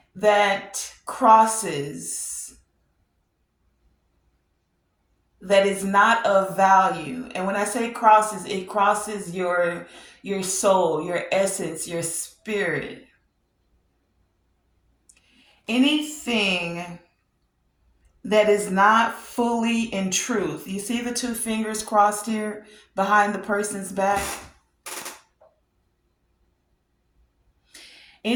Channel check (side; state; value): both; identical; correlation 1.00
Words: that crosses, that is not of value. And when I say crosses, it crosses your soul, your essence, your spirit. Anything that is not fully in truth. You see the two fingers crossed here behind the person's back?